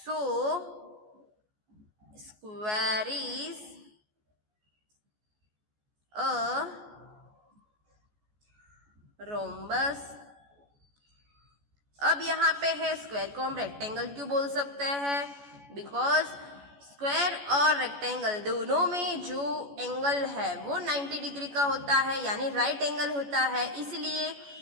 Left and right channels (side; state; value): left; late; 14 ms